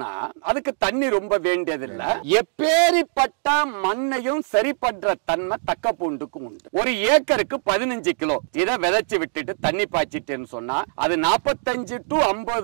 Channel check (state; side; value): silent; left; 64 dB below the other